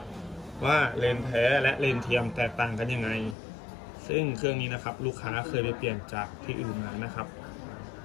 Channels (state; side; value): drops out; right; at 3.4 s